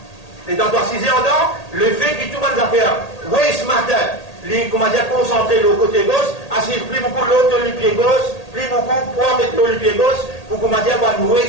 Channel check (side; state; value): right; late; 1.8 ms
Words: le fait qu'il tout le monde a fait, oui, ce matin, les, comment dire, concentré le côté gauche, assis plus beaucoup l'autre le pied gauche, plus beaucoup pour mettre le pied gauche, pour, comment dire, oui,